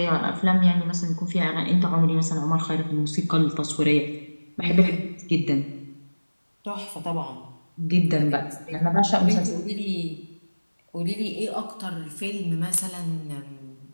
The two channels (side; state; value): both; inverted; correlation -1.00